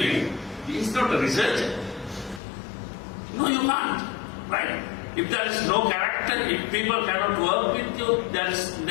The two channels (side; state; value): right; drops out; at 2.4 s